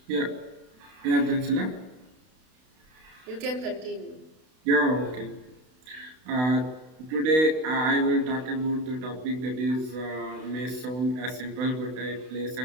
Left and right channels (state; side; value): late; left; 32 ms